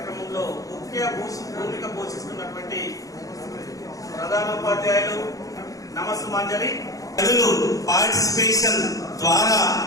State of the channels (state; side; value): late; right; 0.17 ms